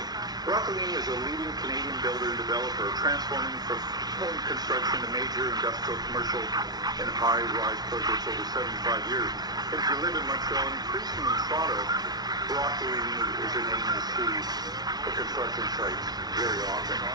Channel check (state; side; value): late; left; 0.19 ms